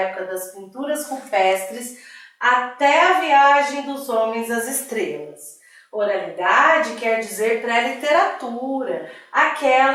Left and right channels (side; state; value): both; identical; correlation 1.00